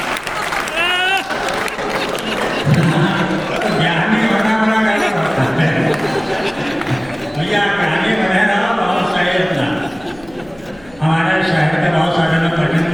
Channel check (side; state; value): left; noise; hum, 24 dB below the sound